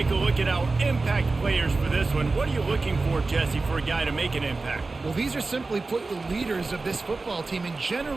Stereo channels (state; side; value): quieter; left; 3.6 dB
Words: a look at our impact players for this one, what are you looking for, Jesse, for a guy to make an impact? Well, these are simply put the leaders of this football team, and